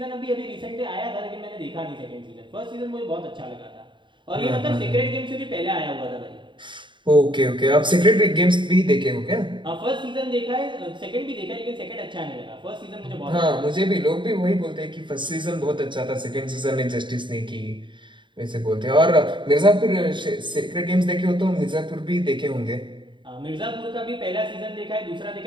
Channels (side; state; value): left; late; 0.23 ms